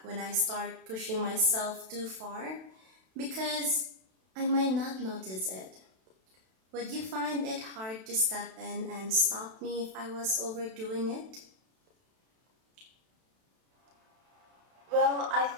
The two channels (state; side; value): late; left; 32 ms